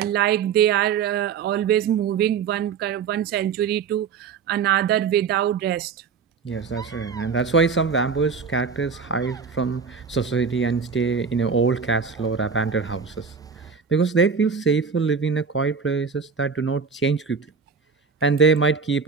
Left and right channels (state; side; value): quieter; left; 5.9 dB